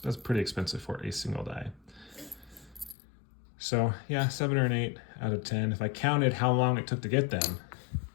expensive for a single die. So yeah, 7 or an 8 out of 10. If I counted how long it took to get them,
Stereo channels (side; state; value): right; drops out; at 3.0 s